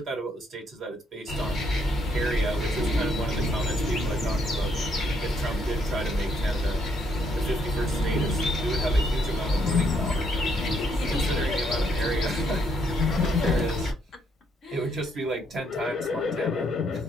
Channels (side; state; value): both; normal; correlation 0.72